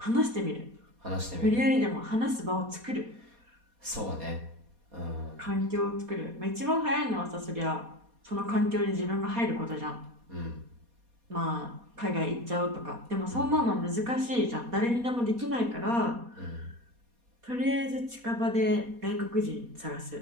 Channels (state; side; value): late; left; 4.2 ms